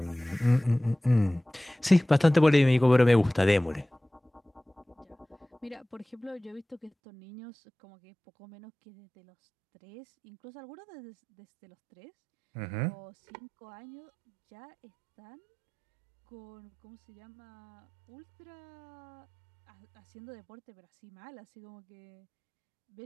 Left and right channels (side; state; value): left; drops out; at 6.9 s